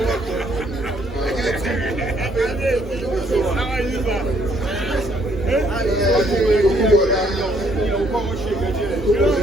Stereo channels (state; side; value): normal; both; correlation 0.67